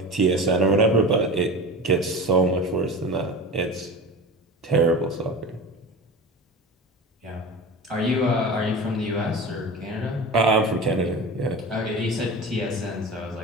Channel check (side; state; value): both; normal; correlation 0.31